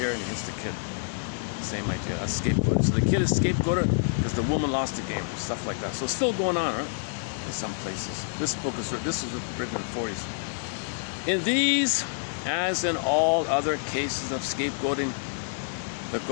and he hits the kid. Same idea, a scapegoat. So the kid is scapegoated because the woman lost the game, stuff like that. So it's still going on, right? In some places. This was written in the 40s. In these, as in all other cases of scapegoating, the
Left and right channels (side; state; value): right; silent; digital silence